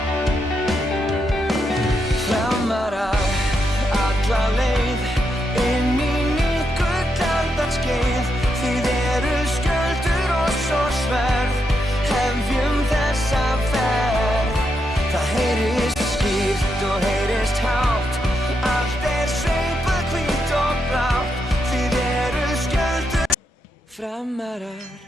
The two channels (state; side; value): normal; both; correlation 0.82